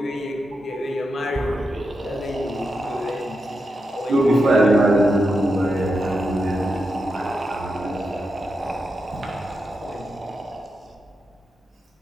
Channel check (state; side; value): normal; both; correlation 0.87